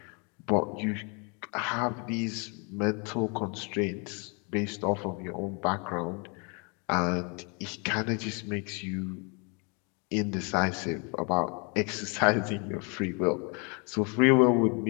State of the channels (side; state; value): right; quieter; 33.8 dB